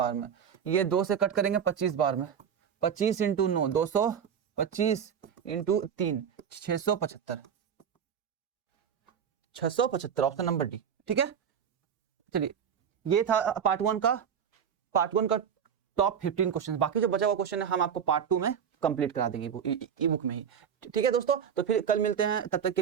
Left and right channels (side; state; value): left; quieter; 7.9 dB